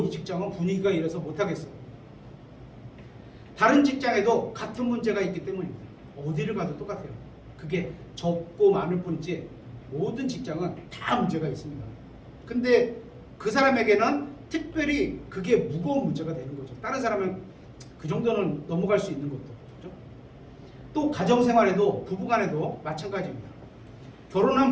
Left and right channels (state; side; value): identical; both; correlation 1.00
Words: 이 직장은 분위기가 이래서 못하겠어. 다른 직장에도 같은 문제가 있기 때문입니다. 어디를 가도 똑같아요. 그게 적고 많을 뿐이지 모든 직장은 다 문제가 있습니다. 근데 그 사람에게는 특별히 그게 무거운 문제가 되는 거죠. 다른 사람은 그 정도는 넘어갈 수 있는 것도. 그렇죠? 또 가정생활에도 부부간에도 마찬가지입니다. 결혼한